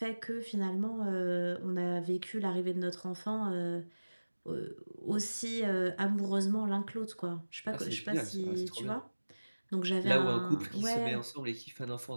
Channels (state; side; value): inverted; both; correlation -1.00